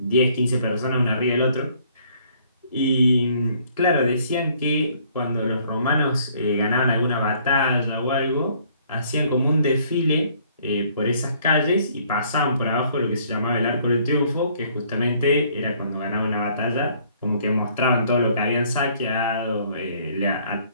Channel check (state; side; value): inverted; both; correlation -0.62